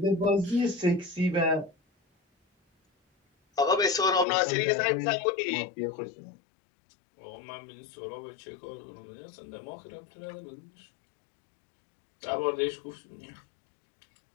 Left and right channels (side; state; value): right; drops out; at 4.2 s